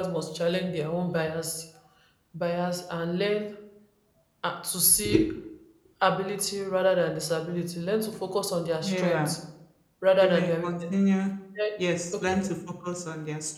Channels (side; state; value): both; identical; correlation 1.00